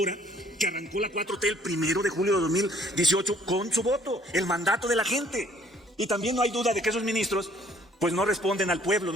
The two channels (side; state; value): both; normal; correlation 0.60